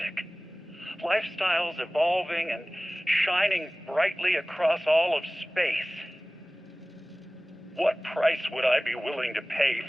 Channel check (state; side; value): normal; both; correlation 0.98